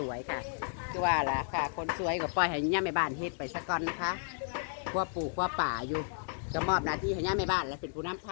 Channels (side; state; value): right; silent; digital silence